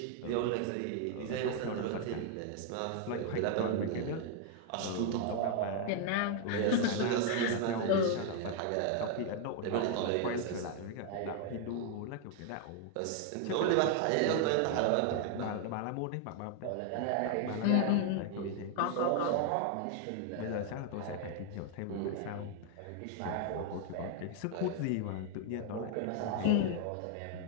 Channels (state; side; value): different; both; correlation 0.00